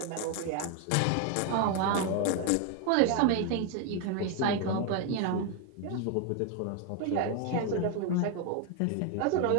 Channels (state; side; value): different; both; correlation 0.01